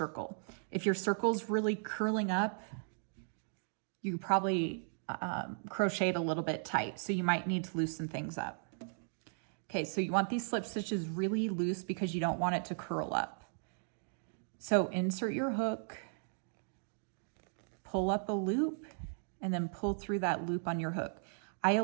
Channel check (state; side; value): silent; left; digital silence